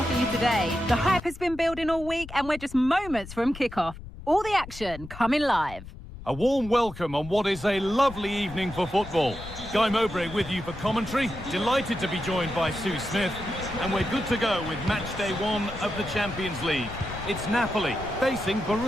for you today. The hype has been building all week and we're just moments from kickoff. All the action coming live. A warm welcome on what is a lovely evening for football. Guy Mowbray with you for commentary. Delighted to be joined by Sue Smith. And we're good to go with match day 1 of the Champions League. It's Napoli facing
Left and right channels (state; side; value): noise; left; rumble, 14 dB below the sound